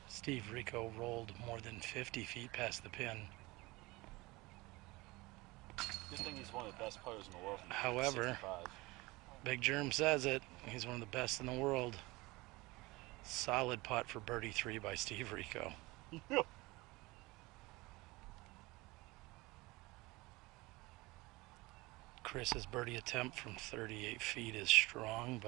Steve Rico rolled more than 50 feet past the pin. Good thing he's one of the best players in the world. However, 65. Big Germ says it. He's one of the best in the world. Solid putt for birdie 3 by Steve Rico. Chris's birdie attempt from 38 feet is strong,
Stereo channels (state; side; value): quieter; left; 22.3 dB